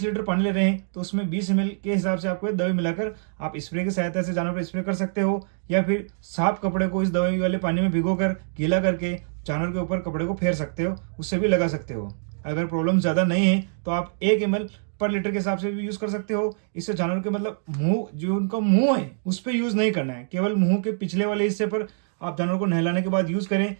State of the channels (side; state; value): left; silent; digital silence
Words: लीटर पानी ले रहे हैं तो उसमें 20 ml के हिसाब से आपको दवाई मिलाकर आप स्प्रे की सहायता से जानवर पर स्प्रे कर सकते हो, या फिर साफ कपड़े को इस दवाई वाले पानी में भिगोकर गीला करके जानवर के ऊपर कपड़े को फेर सकते हो, उससे भी लगा सकते हो। अगर प्रॉब्लम ज़्यादा नहीं है तो आप 1 ml पर लीटर के हिसाब से भी यूज़ कर सकते हो। इससे जानवर के मतलब मुंह, जो उनका मुंह है उस पर यूज़ नहीं करना है, केवल मुंह के पिछले वाले हिस्से पर आप जानवर को नहलाने के बाद यूज़ करें।